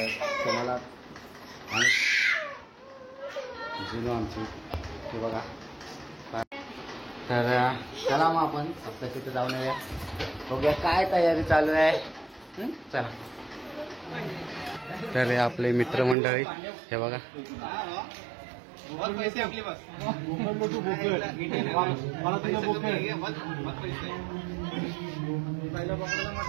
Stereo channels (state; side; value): drops out; left; at 16.2 s